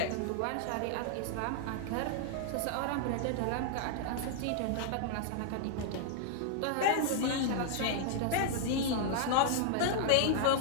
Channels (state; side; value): different; both; correlation -0.01